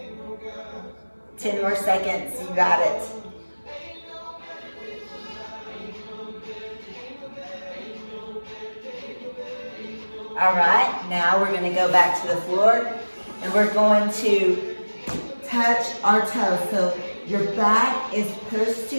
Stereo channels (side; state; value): both; inverted; correlation -1.00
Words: 10 more seconds, you got it. Now we're going to go back to the floor and we're going to touch our toes. So your back is pushed to